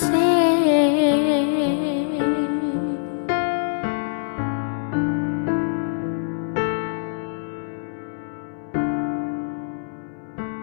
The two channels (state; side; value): silent; right; 61 dB below the other